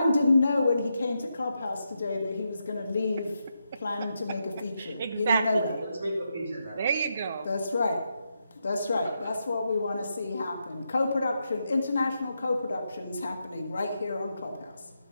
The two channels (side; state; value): both; inverted; correlation -0.84